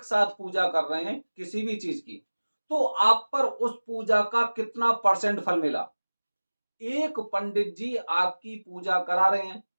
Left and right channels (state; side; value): inverted; both; correlation -1.00